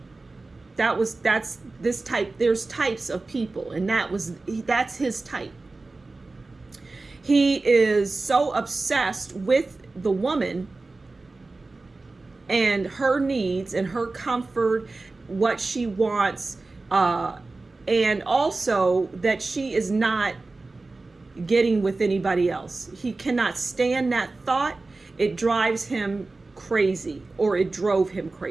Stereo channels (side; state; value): left; quieter; 3.4 dB